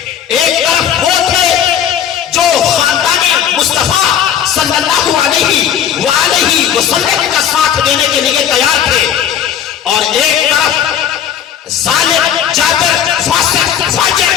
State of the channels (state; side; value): quieter; right; 9.2 dB